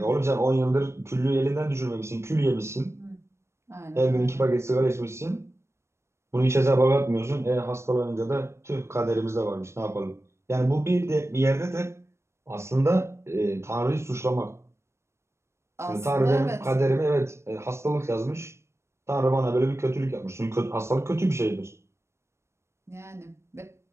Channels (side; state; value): left; late; 0.13 ms